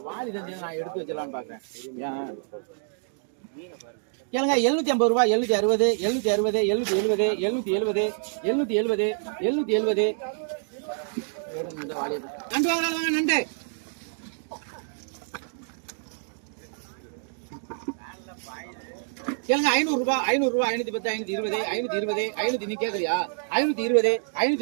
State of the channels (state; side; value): silent; left; digital silence